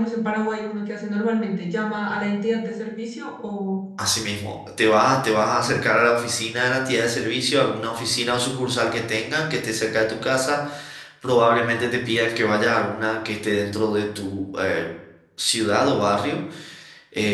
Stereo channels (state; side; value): identical; both; correlation 1.00